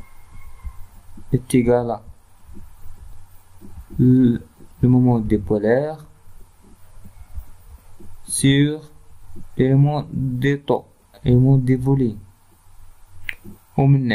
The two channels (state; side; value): identical; both; correlation 1.00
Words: est égal à le moment dipolaire sur l'élément de taux, l'élément de volume. ومن